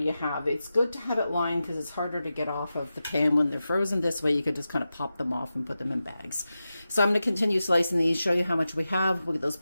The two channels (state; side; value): inverted; both; correlation -0.92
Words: have. It's good to have it lined because it's harder to get off of the pan when they're frozen. This way you could just kind of pop them off and put them in bags. So I'm going to continue slicing these, show you how much we have. We'll get those